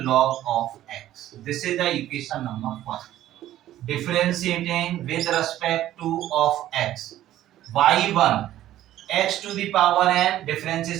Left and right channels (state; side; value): quieter; left; 13.3 dB